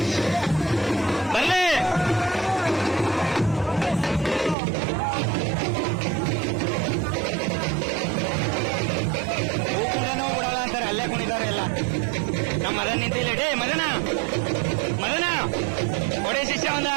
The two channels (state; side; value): drops out; left; at 4.5 s